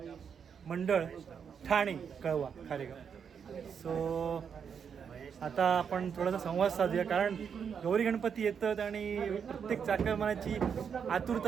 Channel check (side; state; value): left; quieter; 7.1 dB